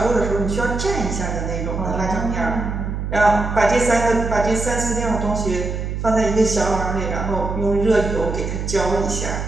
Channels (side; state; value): right; noise; hum, 4 dB below the sound